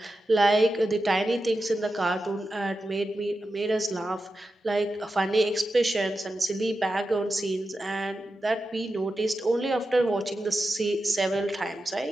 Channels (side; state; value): both; normal; correlation 0.91